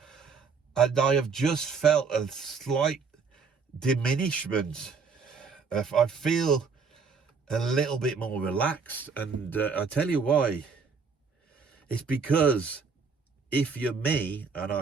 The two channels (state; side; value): quieter; left; 5.3 dB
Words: And I have just felt a slight diminishment. I feel a little bit more relaxed. And I tell you why. It's because if you're me, and